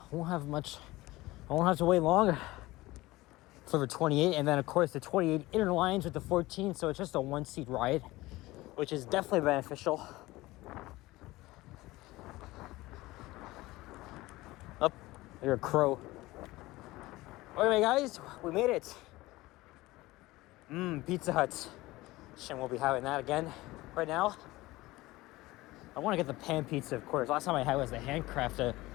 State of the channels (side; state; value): right; quieter; 19.2 dB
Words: won't have to wait long for the 28. And then, of course, the 28 inner lines with the 14. So it's just a one-seat ride, which is definitely beneficial. Up, you're a crow. Anyway, guys, we made it. Pizza Hut. Shame we'll be having that again right now. I want to get the pan pizza, of course. Last time I had was the handcraft